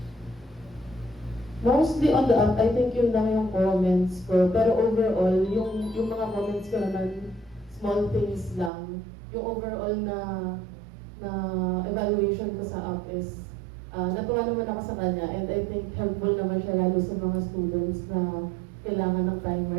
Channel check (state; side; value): drops out; left; at 8.7 s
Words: Mostly on the app, I think yun lang yung comments ko. Pero overall, yung mga comments ko naman, small things lang. Yung overall na evaluation ko sa app is, natuwa naman ako sa kanya and I think helpful naman siya lalo sa mga students na kailangan ng timer